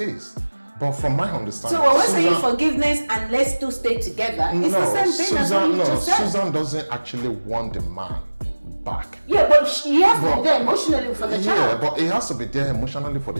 But from my understanding, so when we're saying forgiveness and let's two stay together, it's the same thing as what you just said. Susan doesn't actually want the man back. Yeah, but he has to be there emotionally for the child. Yeah, but he has to be there emotionally for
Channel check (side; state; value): both; inverted; correlation -1.00